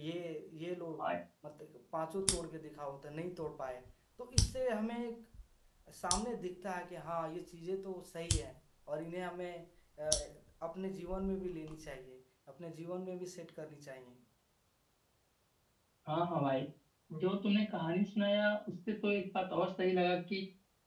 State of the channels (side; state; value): both; identical; correlation 1.00